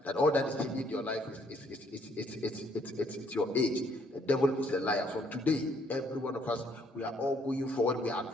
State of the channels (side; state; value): both; normal; correlation 0.67